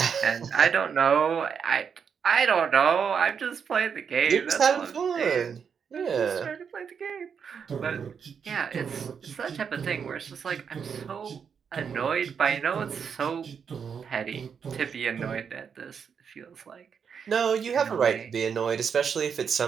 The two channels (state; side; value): quieter; left; 6.8 dB